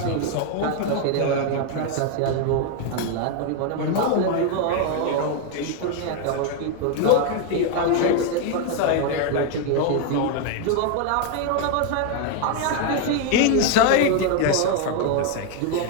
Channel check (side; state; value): both; different; correlation 0.01